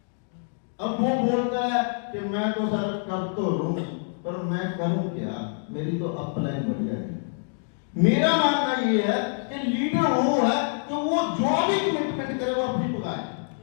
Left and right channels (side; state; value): right; silent; 61 dB below the other